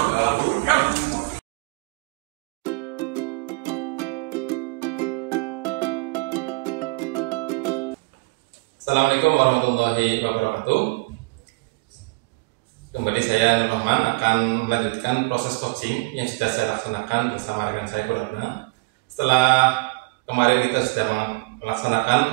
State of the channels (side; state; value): left; quieter; 26.5 dB